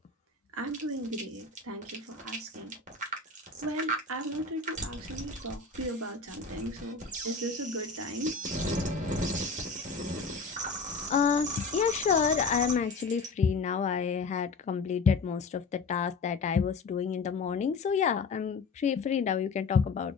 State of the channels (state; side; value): quieter; right; 4.3 dB